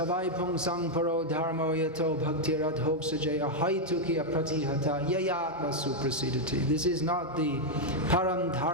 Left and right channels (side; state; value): both; normal; correlation 0.00